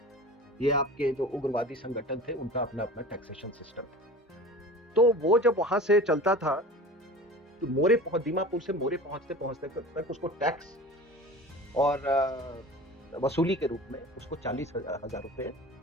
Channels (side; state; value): both; normal; correlation 0.38